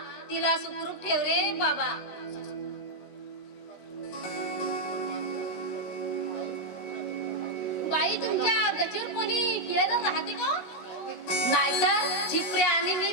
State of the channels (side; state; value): right; late; 17 ms